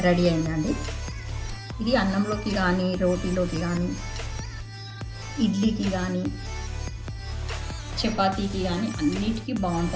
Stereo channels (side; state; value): both; identical; correlation 1.00